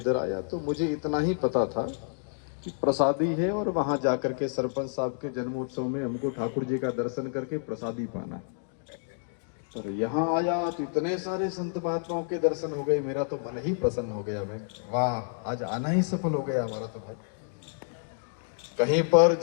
आया तो मुझे इतना ही पता था कि प्रसादी है और वहां जाकर के सरपंच साहब के जन्मोत्सव में हमको ठाकुर जी का दर्शन करके प्रसादी पाना। और यहाँ आया तो इतने सारे संत महात्माओं के दर्शन हो गए, मेरा तो मन ही प्रसन्न हो गया। मैं वाह, आज आना ही सफल हो गया हमारा तो भाई। कहीं पर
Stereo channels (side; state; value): right; silent; digital silence